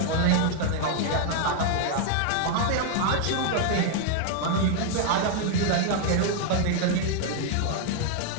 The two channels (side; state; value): both; different; correlation 0.00